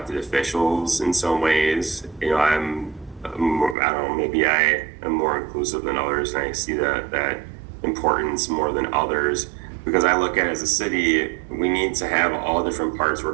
officials in some ways. I don't know, maybe I am more inclusive than others, and I see that importance more than others, because I look at it as a city, we need to have all different parts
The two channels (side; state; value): left; drops out; at 3.8 s